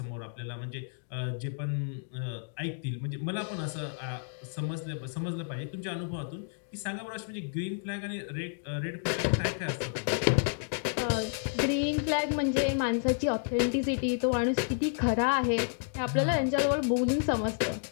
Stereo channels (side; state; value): right; silent; digital silence